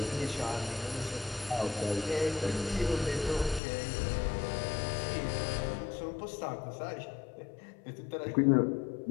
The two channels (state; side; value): drops out; right; at 3.6 s